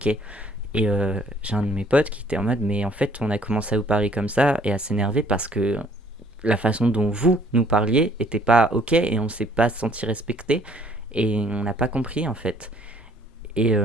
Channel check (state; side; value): normal; both; correlation 0.61